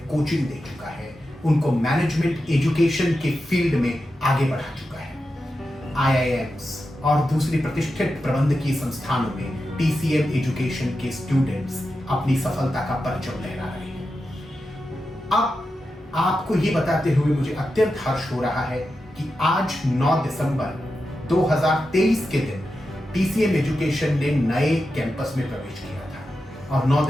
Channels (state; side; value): normal; both; correlation 0.90